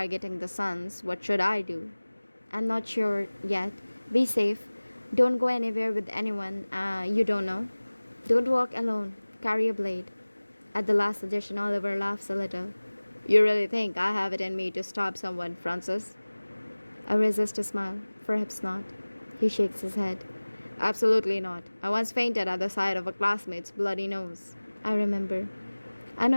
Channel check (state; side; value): inverted; both; correlation -1.00